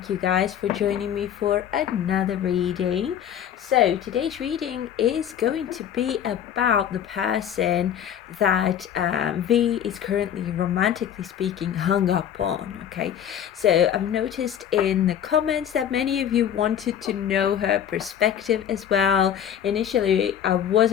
you guys for joining me for another reading. So today's reading is going to be about the person that V is currently, romantically speaking, hung up on. Okay, so I've noticed in the comments that many of you wanted to know her perspective as well. Initially I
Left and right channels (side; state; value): right; quieter; 9.5 dB